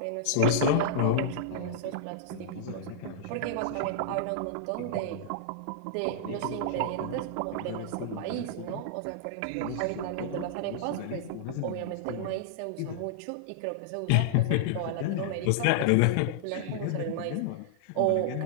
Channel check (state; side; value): different; both; correlation -0.01